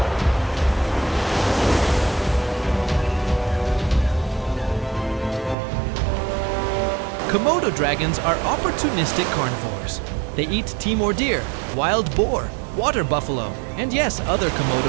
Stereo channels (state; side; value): drops out; left; at 5.6 s